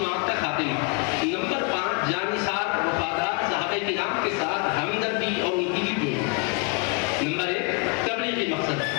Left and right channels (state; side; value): quieter; right; 33.8 dB